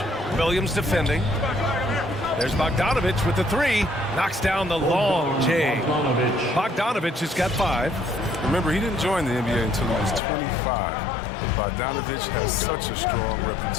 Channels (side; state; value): right; drops out; at 10.2 s